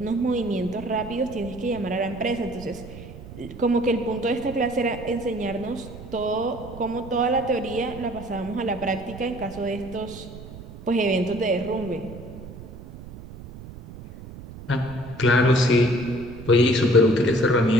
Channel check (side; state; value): right; noise; rumble, 15 dB below the sound